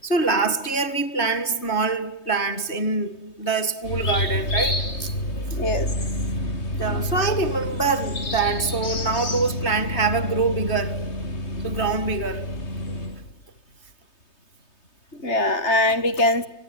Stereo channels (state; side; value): late; right; 3.2 ms